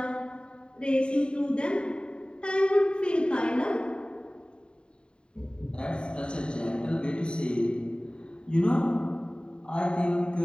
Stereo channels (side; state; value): right; late; 0.051 ms